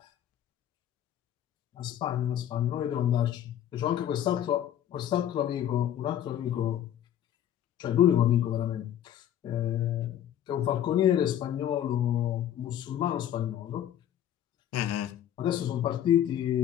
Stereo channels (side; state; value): right; quieter; 10.9 dB